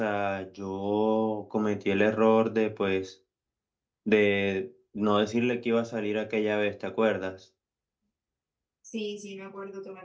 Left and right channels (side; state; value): both; identical; correlation 1.00